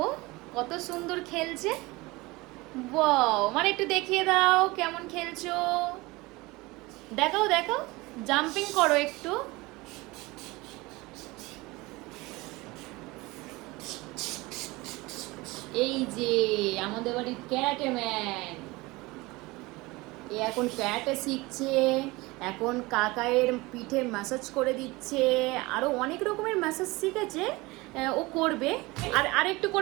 কত সুন্দর খেলছে। বাহ, মানে একটু দেখিয়ে দাও কেমন খেলছো। দেখাও দেখাও, জাম্পিং করো একটু। এই যে আমাদের বাড়ির ক্যারাটে ম্যান, এ এখন ক্যারাটে শিখছে। এখন কাকায়ের পিঠে ম্যাসাজ করে দিচ্ছে, আরো অনেক রকমের ম্যাসাজ শিখেছে। ও করবে। আর আরেকটু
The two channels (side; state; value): left; quieter; 22.3 dB